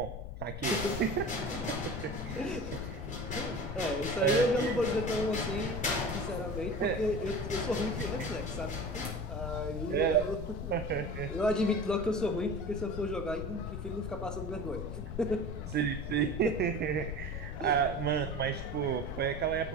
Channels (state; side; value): noise; left; rumble, 8 dB below the sound